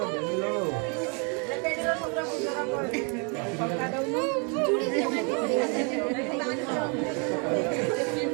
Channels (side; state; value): left; quieter; 36.3 dB